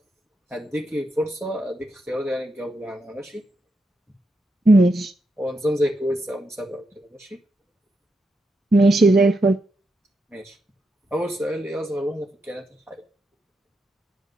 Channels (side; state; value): both; normal; correlation 0.83